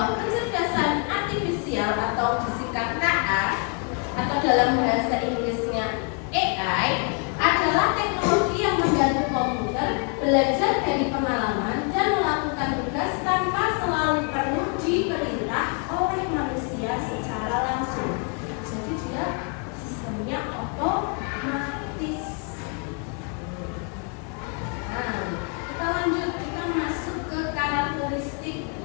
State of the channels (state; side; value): quieter; right; 37.2 dB